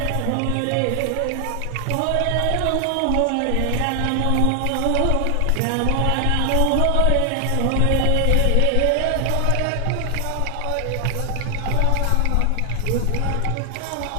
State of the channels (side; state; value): both; different; correlation 0.00